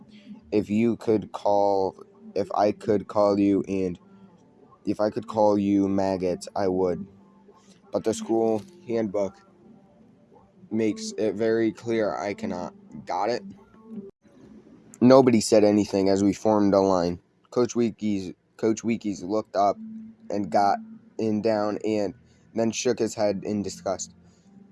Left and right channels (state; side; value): identical; both; correlation 1.00